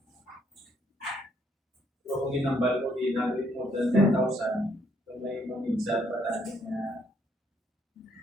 So kung inambal ko, ginagawin more than 10,000, so may maminsan pa tayo na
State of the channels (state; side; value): normal; both; correlation 0.69